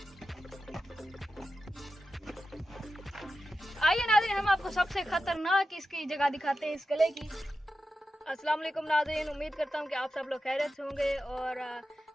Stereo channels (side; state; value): both; normal; correlation 0.91